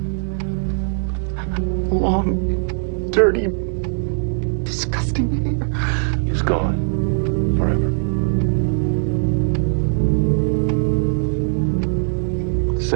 Long, dirty, disgusting hair. He's gone. Forever.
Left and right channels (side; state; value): left; silent; 66 dB below the other